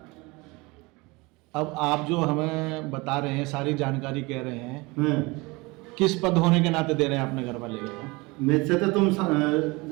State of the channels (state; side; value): quieter; left; 24.7 dB